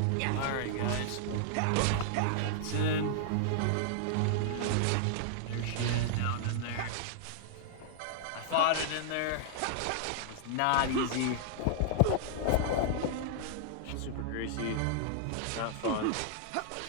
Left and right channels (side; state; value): both; different; correlation -0.01